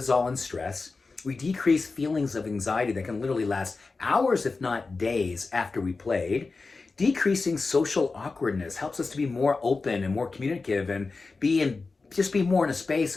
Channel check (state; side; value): quieter; right; 4.0 dB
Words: and stress. We decrease feelings of anxiety that can literally last hours, if not days, after we played. Decreasing social awkwardness helps us to be more open and more communicative and just be more in a space